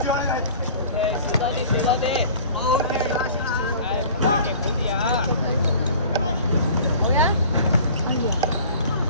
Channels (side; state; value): both; inverted; correlation -0.45